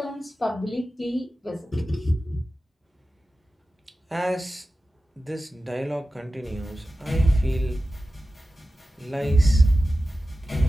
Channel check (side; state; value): both; normal; correlation 0.94